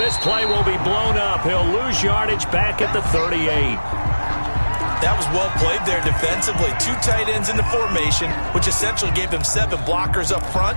this play will be blown up. He'll lose yardage back at the 38. That was well played there defensively. 2 tight ends in the formation, which essentially gave them 7 blockers up front.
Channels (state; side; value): inverted; both; correlation -1.00